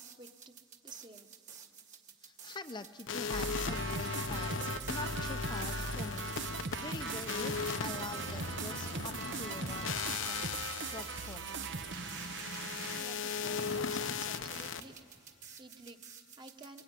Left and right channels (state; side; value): normal; both; correlation 0.18